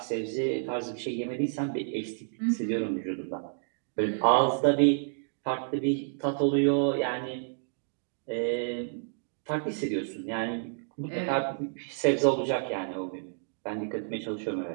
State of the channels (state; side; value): silent; left; digital silence